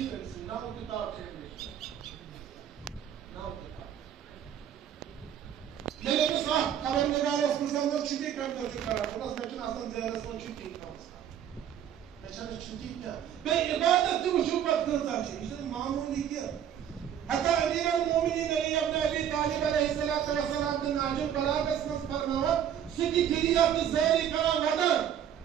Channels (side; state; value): left; quieter; 9.7 dB